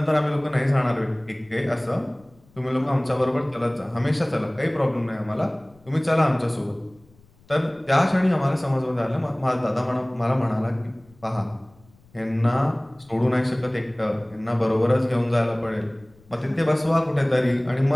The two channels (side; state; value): left; noise; rumble, 29 dB below the sound